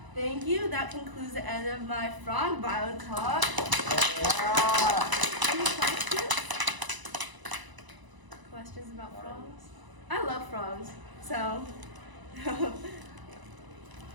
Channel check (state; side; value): late; left; 1.0 ms